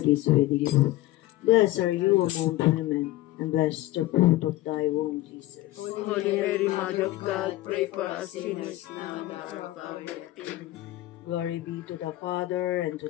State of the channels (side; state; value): right; quieter; 16.5 dB